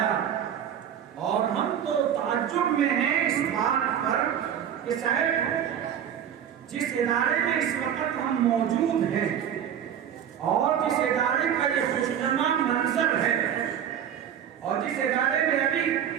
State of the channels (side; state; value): left; quieter; 9.2 dB